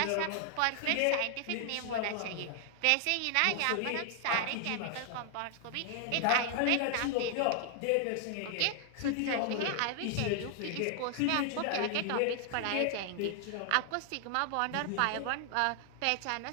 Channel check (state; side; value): different; both; correlation 0.00